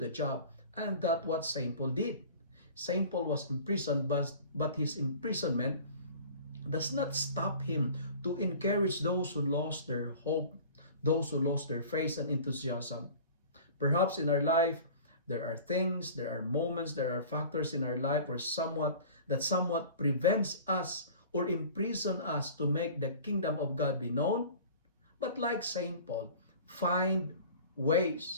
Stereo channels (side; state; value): both; inverted; correlation -0.42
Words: job. And that's what St. Paul did. St. Paul was imprisoned, but his imprisonment does not stop him to encourage those who lost their hope, those who lost their faith and enthusiasm. Perhaps in our life, there are things, there are moments, there are factors in our life where somewhat prevents us or imprison us to make the kingdom of God be known. But like St. Paul, find